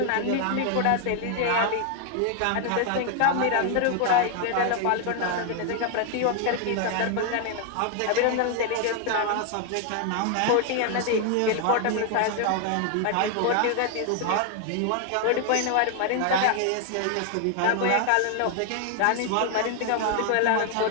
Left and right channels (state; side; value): different; both; correlation 0.00